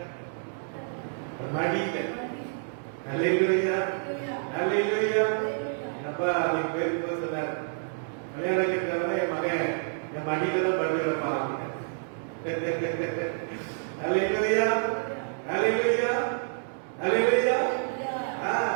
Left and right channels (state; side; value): silent; left; digital silence